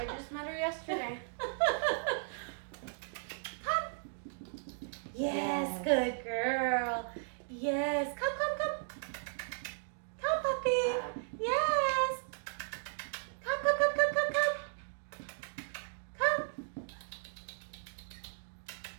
just met her yesterday. Come. Yes, good girl. Yes, come. Come, puppy. Yes. Come.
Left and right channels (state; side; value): silent; left; digital silence